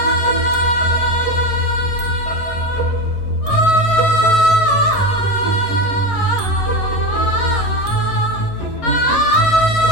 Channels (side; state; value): right; late; 11 ms